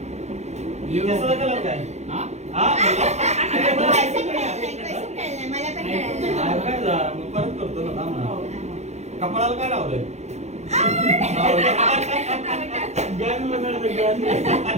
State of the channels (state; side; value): late; left; 0.32 ms